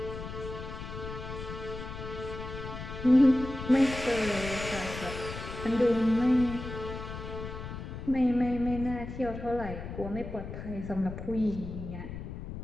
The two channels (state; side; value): noise; left; rumble, 8 dB below the sound